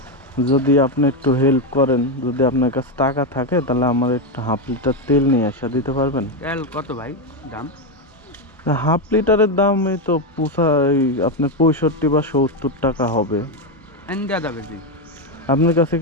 যদি আপনি একটু হেল্প করেন, যদি আপনার কাছে টাকা থাকে তাহলে আমার একটু হাফ লিটার তেল নিয়ে আসা দিতে পারবেন? তেল কত ভাই দাম? হাফ লিটারের দাম এই তো আপনার 65 বা 70 টাকা হবে। এনে দেওয়া যাবে জি। আপনার কাছে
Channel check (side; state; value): both; normal; correlation 0.07